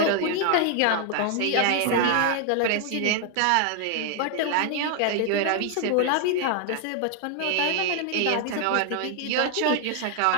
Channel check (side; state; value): both; different; correlation 0.00